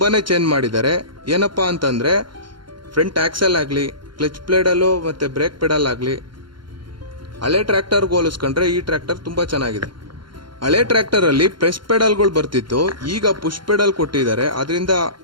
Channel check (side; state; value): left; late; 0.72 ms